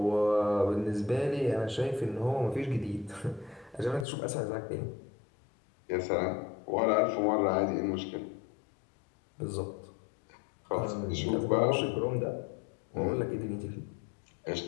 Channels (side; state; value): right; drops out; at 4.0 s